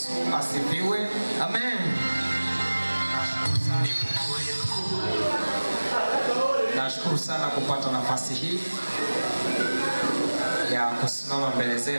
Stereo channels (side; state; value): both; inverted; correlation -1.00